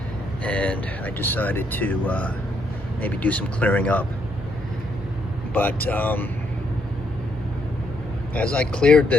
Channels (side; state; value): both; normal; correlation 0.74